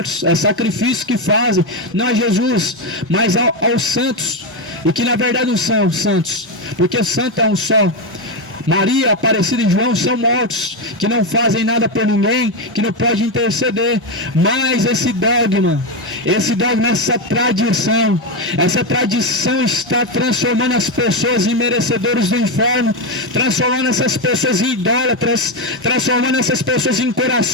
é sacrifício que fazem, não a Jesus, mas aos santos, e que na verdade não são santos, porque santo é um só. Maria, Aparecida e João são mortos, que não fazem nada por ninguém, que não pode interceder. Mas esse dogma, essa tradição está transformando as pessoas em merecedores do inferno, transformando essas pessoas em idólatras, transformando essas pessoas em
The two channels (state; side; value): normal; both; correlation 0.09